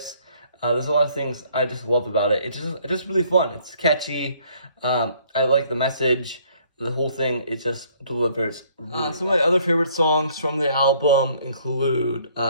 There's a lot of things I just love about it. It's just really fun. It's catchy. I like the message. The whole thing, it just delivers. Some of my other favorite songs from the album include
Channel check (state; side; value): inverted; both; correlation -0.63